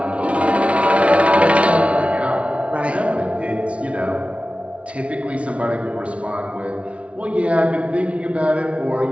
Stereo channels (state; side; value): late; left; 0.062 ms